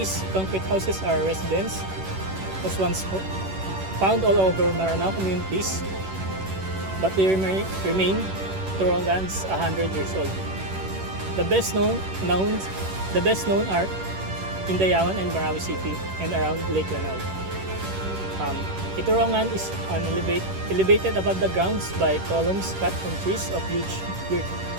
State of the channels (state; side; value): late; left; 11 ms